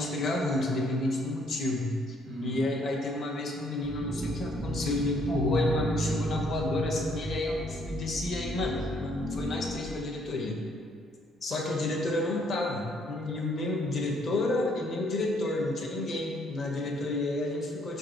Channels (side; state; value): both; normal; correlation 0.67